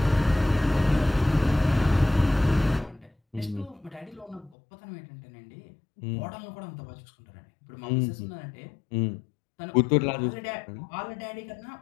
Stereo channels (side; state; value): right; drops out; at 4.5 s